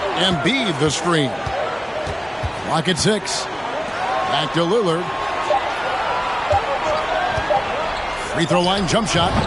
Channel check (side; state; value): both; identical; correlation 1.00